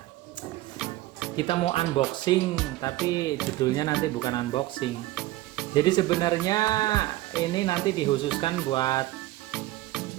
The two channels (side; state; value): left; quieter; 17.1 dB